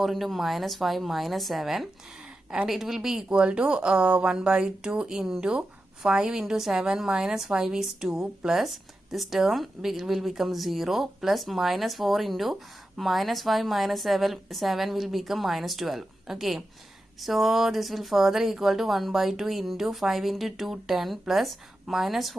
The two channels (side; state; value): both; normal; correlation 0.91